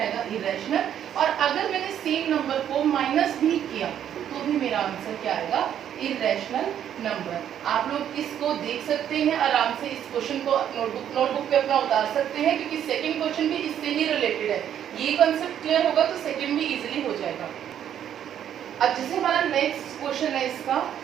आएगा, इरैशनल। और अगर मैंने सेम नंबर को माइनस भी किया तो भी मेरा आंसर क्या आएगा, इरैशनल नंबर। आप लोग इसको देख सकते हैं आराम से, इस क्वेश्चन को नोटबुक पे अपना उतार सकते हैं, क्योंकि सेकंड क्वेश्चन भी इससे ही रिलेटेड है। ये कंसेप्ट क्लियर होगा तो सेकंड भी इजीली हो जाएगा। अब जैसे हमारा नेक्स्ट क्वेश्चन है इसका,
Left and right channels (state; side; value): quieter; left; 9.9 dB